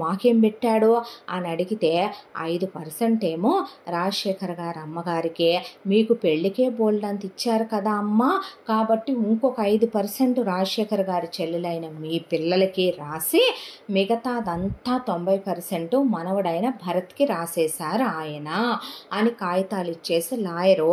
మాకేం పెట్టాడు అని అడిగితే 5% ఏమో రాజశేఖర్ గారి అమ్మగారికి, మీకు పెళ్ళికే బోల్డంత ఇచ్చారు కదా అమ్మ, కాబట్టి ఇంకొక 5% రాజశేఖర్ గారి చెల్లెలైన మీ పిల్లలకి రాసి మిగతాదంతా 90% మనవడైన భరత్కి రాసేశారు ఆయన అని కాగితాలు ఇచ్చేసి లాయరు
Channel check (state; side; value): identical; both; correlation 1.00